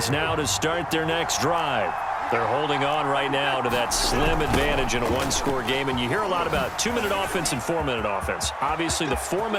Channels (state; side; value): identical; both; correlation 1.00